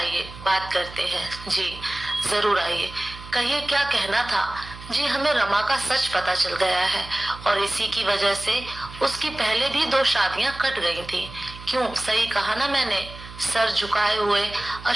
बात करते हैं। जी जरूर आइए, कहिए क्या कहना था। जी हमें रमा का सच पता चल गया है, और इसी की वजह से उसकी पहले भी 2 शादियां कट गई थी। क्यों, सही कहा ना मैंने? सर झुकाए हुए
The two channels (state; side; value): noise; right; hum, 15 dB below the sound